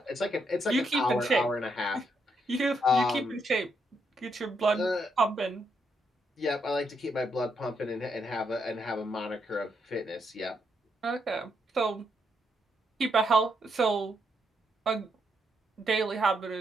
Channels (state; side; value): normal; both; correlation 0.78